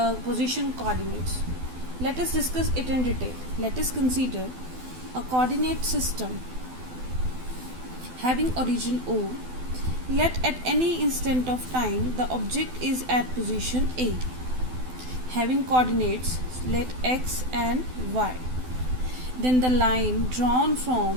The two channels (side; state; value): left; late; 12 ms